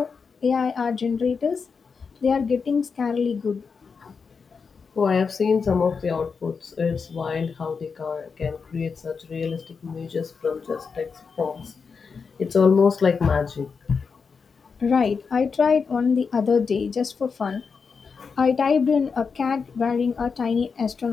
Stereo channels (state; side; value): quieter; right; 5.4 dB